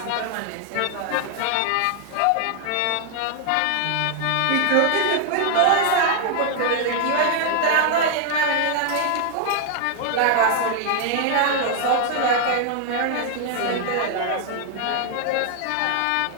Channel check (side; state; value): both; different; correlation 0.00